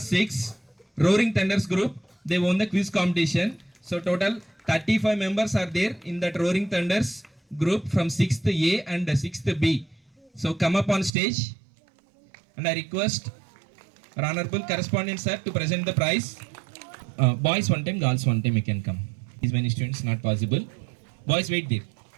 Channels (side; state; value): left; drops out; at 11.1 s